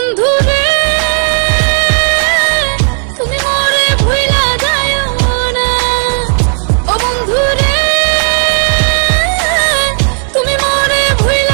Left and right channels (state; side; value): silent; left; 58 dB below the other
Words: রে তুমি মরে ভুইলা যাইও না, ও বন্ধু রে তুমি মরে